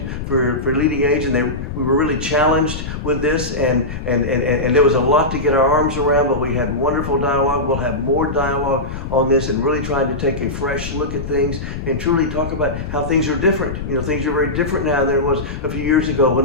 for LeadingAge, and we were really challenged with this, and there was a lot to get our arms around, but we had wonderful dialogue. We'll have more dialogue on this, and really trying to take a fresh look at things and truly talk about how things are different. You know, things are very different now than it was a few years ago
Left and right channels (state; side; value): noise; left; rumble, 7 dB below the sound